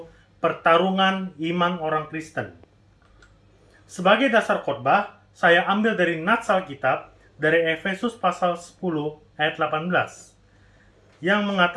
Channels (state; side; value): identical; both; correlation 1.00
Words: pertarungan iman orang Kristen. Sebagai dasar khotbah, saya ambil dari nats Alkitab dari Efesus pasal 10 ayat 18 yang